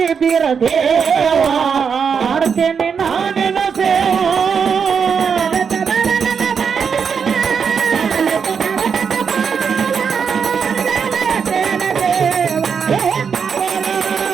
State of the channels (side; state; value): left; quieter; 6.4 dB